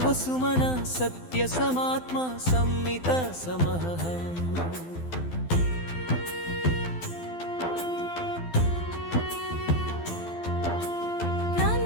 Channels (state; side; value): late; right; 12 ms